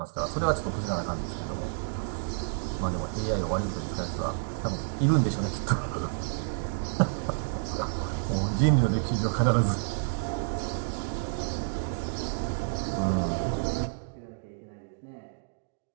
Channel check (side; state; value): left; silent; digital silence